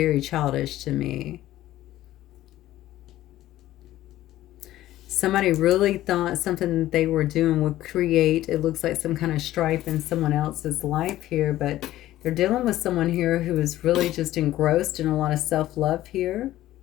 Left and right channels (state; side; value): quieter; right; 14.6 dB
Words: childish to me. Somebody really thought something that they were doing would create, it looks like, some kind of strife in someone else's life here, but they're dealing with someone here who is really just engrossed in a lot of self-love here.